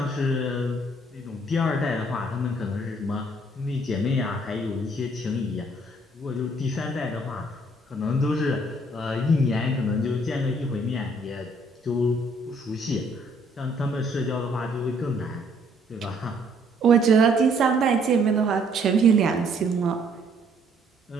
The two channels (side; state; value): both; normal; correlation 0.64